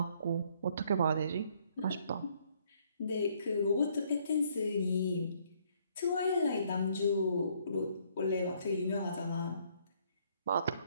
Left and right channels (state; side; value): inverted; both; correlation -0.66